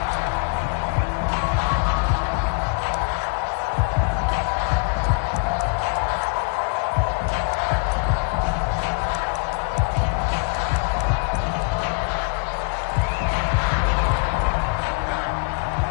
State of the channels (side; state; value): right; quieter; 38.5 dB